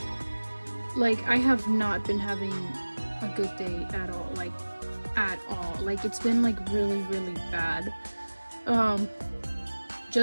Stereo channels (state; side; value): inverted; both; correlation -1.00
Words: Like, I have not been having a good day at all. Like, at all. Like, it's been like really, really bad.